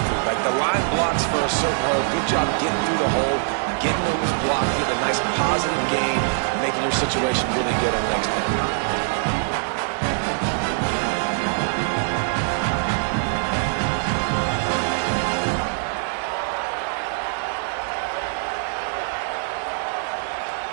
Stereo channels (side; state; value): left; silent; 63 dB below the other